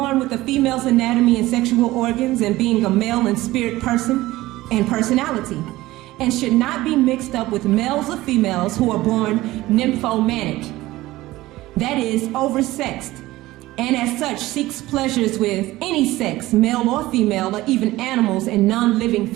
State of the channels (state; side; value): quieter; left; 17.7 dB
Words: with a female's anatomy and sexual organs and being a male and spirit person and personality, and should not be mixed up with males or females who are born nymphomanic. That is, oversexed, and as such seeks pleasures with any sex, male or female, or even animals and non-living